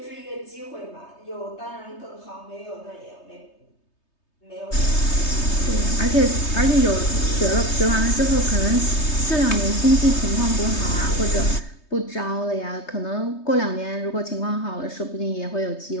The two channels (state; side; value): late; right; 3.3 ms